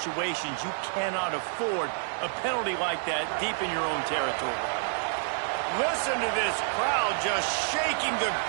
You cannot afford a penalty like that deep in your own territory. Listen to this crowd just shaking the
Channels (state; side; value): silent; left; digital silence